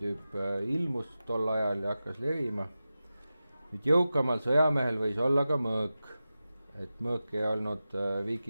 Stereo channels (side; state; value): both; inverted; correlation -0.94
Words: ilmus tol ajal ja hakkas levima. Nüüd jõukamal sõjamehel võis olla ka mõõk, et mõõk ei olnud